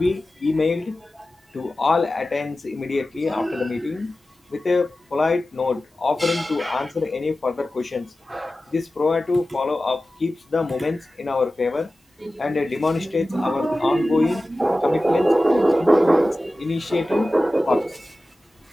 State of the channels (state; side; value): normal; both; correlation 0.95